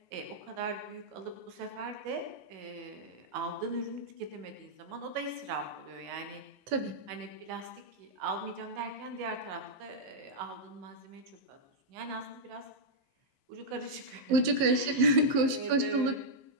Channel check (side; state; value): left; late; 15 ms